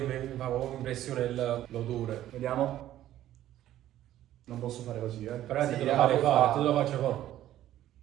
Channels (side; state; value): left; quieter; 13.0 dB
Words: mi fa proprio impressione l'odore. Vediamo. Non posso fare così, Però Sì, te lo la fare puoi fare, fare. te lo faccio fare.